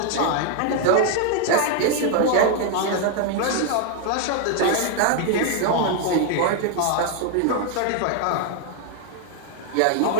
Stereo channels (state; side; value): different; both; correlation 0.00